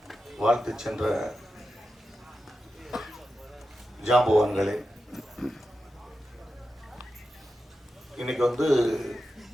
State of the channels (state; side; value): normal; both; correlation 0.90